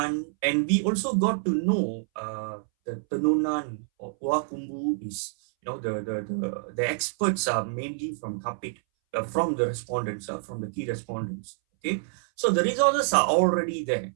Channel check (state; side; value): silent; left; 60 dB below the other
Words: and we also got to know the Tenunan or Puakumbu is, the experts are mainly from Kapit, from the respondents, from the key respondents. Okay, so the resources are already there.